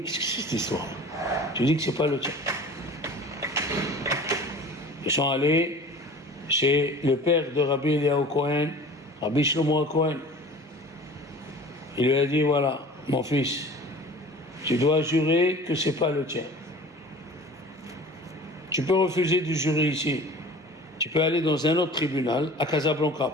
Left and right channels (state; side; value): normal; both; correlation 0.42